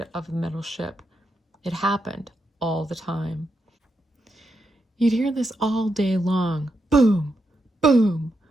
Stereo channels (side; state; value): both; normal; correlation 0.84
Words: of the metal ship. It happened all the time. You'd hear this all day long. Boom, boom,